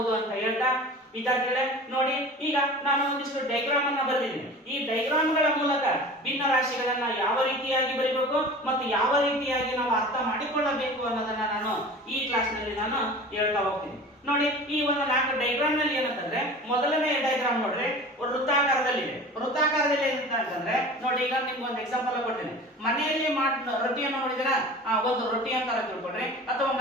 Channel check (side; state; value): both; normal; correlation 0.38